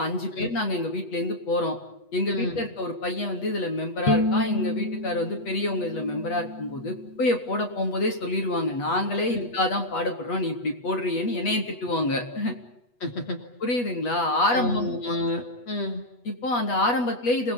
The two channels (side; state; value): right; late; 8.2 ms